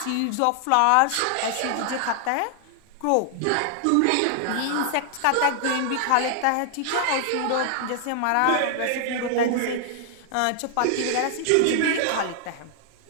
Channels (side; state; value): both; different; correlation 0.00